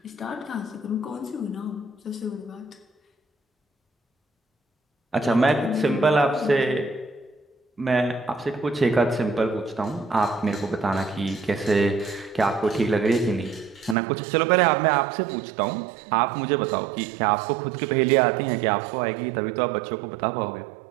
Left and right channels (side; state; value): left; drops out; at 14.0 s